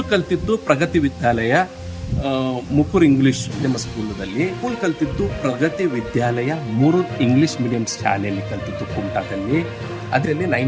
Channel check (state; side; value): identical; both; correlation 1.00